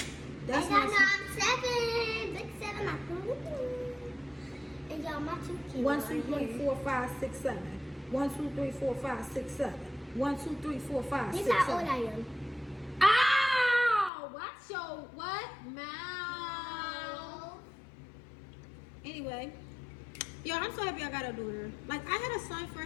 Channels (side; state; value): right; drops out; at 14.1 s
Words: That's and y'all my know I'm 7. Big 7. And y'all, my 2 kids 1, are 2, 3, here. 4, 5, 6, 7. 1, 2, 3, 4, 5, 6, 7. 1, 2, 3, 4, 5, 6, This 7. how old I am. Ow! Watch your what? Mouth. Anyway. Yo, I'm so happy I got a daughter. Like, I had a son